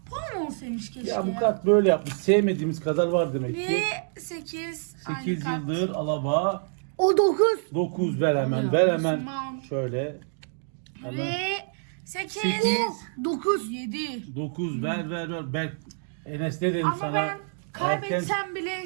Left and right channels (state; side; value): silent; left; digital silence